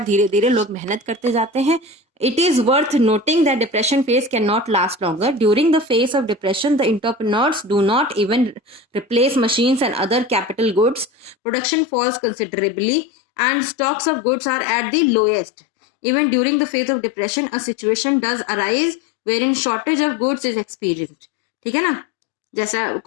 धीरे धीरे लोग मेहनत करते जाते हैं। It is worth noting that depression phase cannot last longer. During the phase of depression, the entrepreneurs do not even replace machines and other capital goods. Production falls considerably and stocks of goods are at the lowest. Even during the phase of depression, a situation does arise wherein shortage of goods is experienced. ठीक है ना, जैसा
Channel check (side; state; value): right; drops out; at 11.4 s